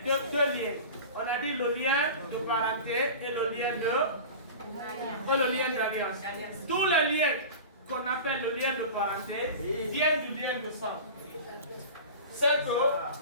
deux liens. On a dit le lien de parenté et le lien d'alliance. Tous les liens qu'on appelle le lien de parenté viennent du lien de sang. C'est que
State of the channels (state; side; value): inverted; both; correlation -0.34